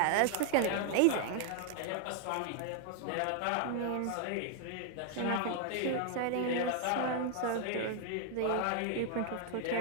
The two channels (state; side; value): different; both; correlation 0.00